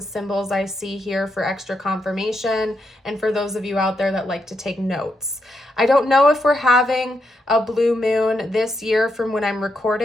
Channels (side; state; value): both; normal; correlation 0.81